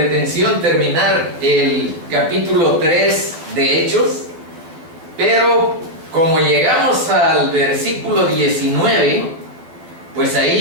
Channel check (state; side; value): late; left; 12 ms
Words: terminar el capítulo 3 de Hechos, pero como llegamos al versículo 19, pues